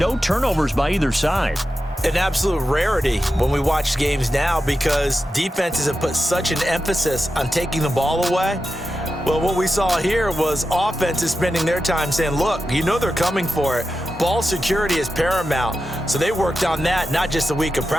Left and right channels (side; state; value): both; normal; correlation 0.90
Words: turnovers by either side. An absolute rarity when we watch games now because defenses have put such an emphasis on taking the ball away. Well, what we saw here was offenses spending their time saying, look, you know they're coming for it. Ball security is paramount. So they worked on that, not just a week of